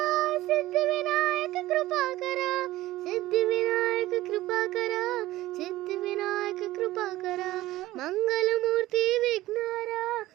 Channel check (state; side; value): quieter; left; 16.6 dB